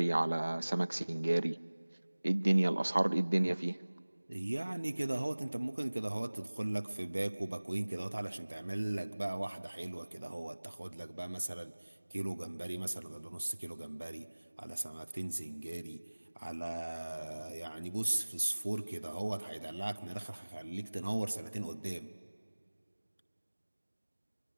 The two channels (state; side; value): inverted; both; correlation -1.00